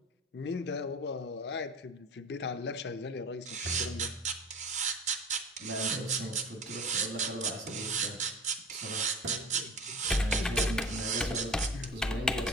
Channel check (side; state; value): both; normal; correlation 0.36